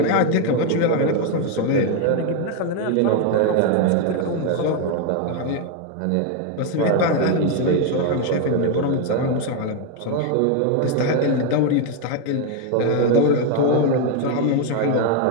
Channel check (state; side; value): different; both; correlation 0.01